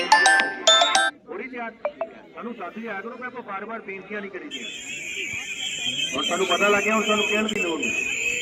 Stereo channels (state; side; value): identical; both; correlation 1.00